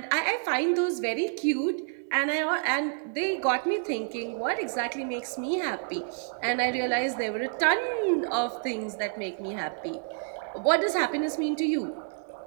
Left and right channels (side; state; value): left; silent; 59 dB below the other